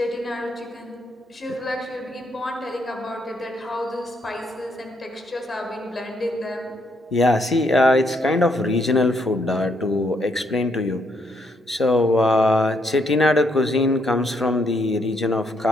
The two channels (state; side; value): normal; both; correlation 0.74